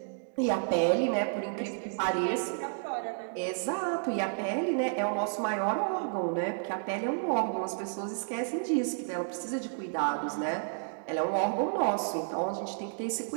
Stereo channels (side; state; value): left; silent; digital silence